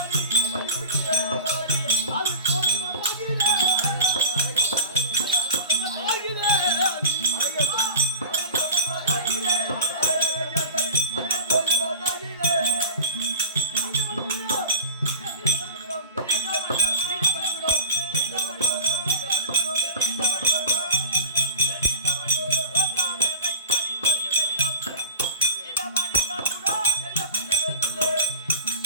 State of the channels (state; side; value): inverted; both; correlation -0.31